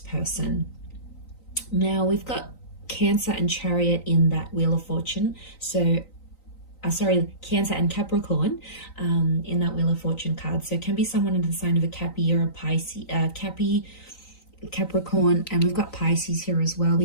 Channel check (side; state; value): right; late; 3.9 ms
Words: person. Now we've got Cancer and Chariot in that Wheel of Fortune. So Cancer and Capricorn in that Wheel of Fortune card. So it can be someone in the sign of a Cappy or a Pisces, Capricorn, and we've got Pisces here as well.